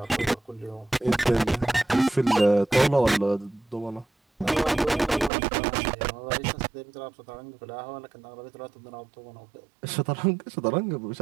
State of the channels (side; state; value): left; drops out; at 5.3 s